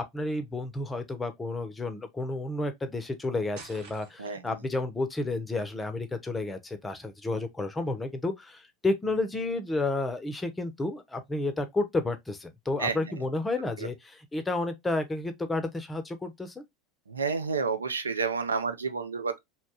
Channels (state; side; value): normal; both; correlation 0.51